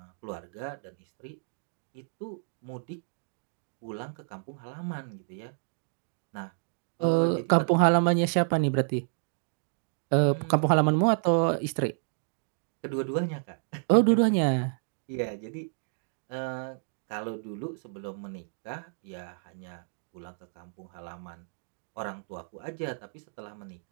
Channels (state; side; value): silent; left; digital silence